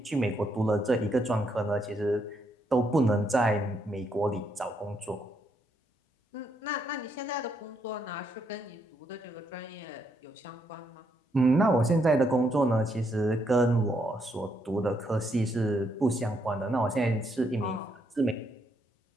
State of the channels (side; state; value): both; normal; correlation 0.76